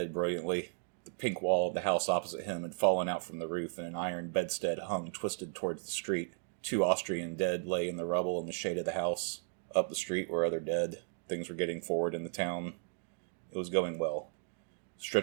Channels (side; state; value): left; silent; digital silence